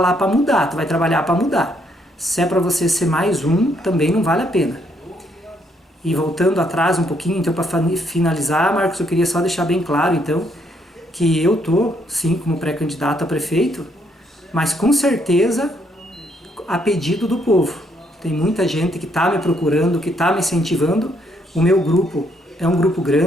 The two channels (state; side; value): normal; both; correlation 0.72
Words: para mudar, tu vai trabalhar para mudar. Se é para você ser mais um, também não vale a pena. E voltando atrás um pouquinho, então, para finalizar, Marcos, eu queria só deixar bem claro, então, que eu tô, sim, como pré-candidato a prefeito, mas com certeza a pedido do povo. Tem muita gente que está me procurando, que está me incentivando. O meu grupo é um grupo